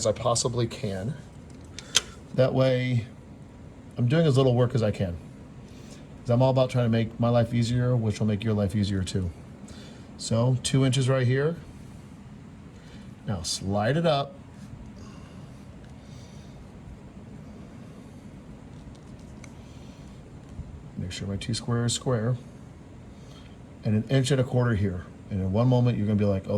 I possibly can. That way I'm doing as little work as I can. Because I'm all about trying to make my life easier, which will make your life easier too. So 2 inches right here. Now slide it up. Make sure my T-square is square. And 1 1/4 inches here. And in one moment, you're gonna be like, oh,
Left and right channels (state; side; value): identical; both; correlation 1.00